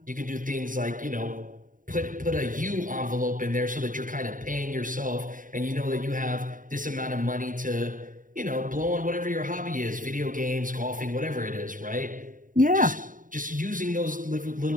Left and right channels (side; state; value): left; late; 0.39 ms